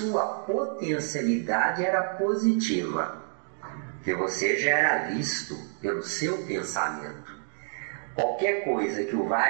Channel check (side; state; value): left; silent; 59 dB below the other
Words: potencialidade era positiva, que você já era visto pelo seu pensamento. Qualquer coisa que o